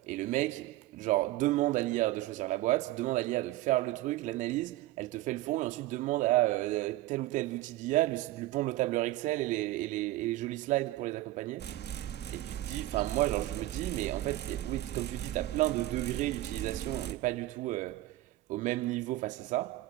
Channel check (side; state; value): left; quieter; 16.6 dB